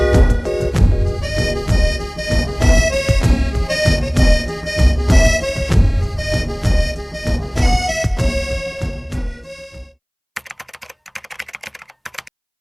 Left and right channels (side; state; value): both; identical; correlation 1.00